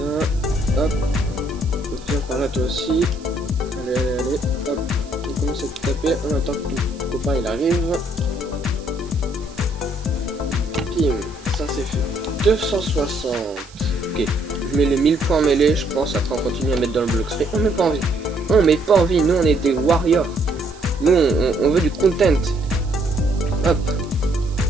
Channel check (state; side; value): noise; right; hiss, 23 dB below the sound